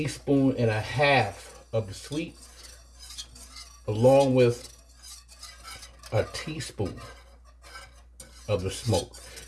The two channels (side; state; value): both; identical; correlation 1.00